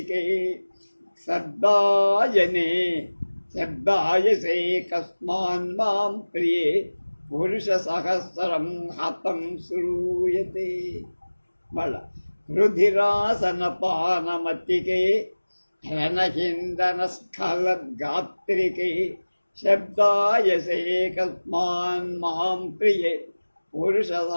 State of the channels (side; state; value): both; inverted; correlation -1.00